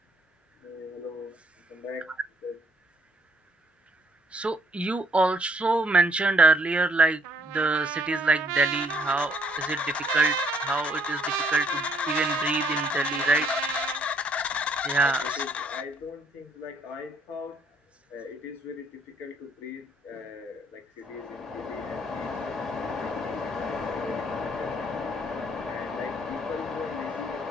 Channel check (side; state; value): both; normal; correlation 0.65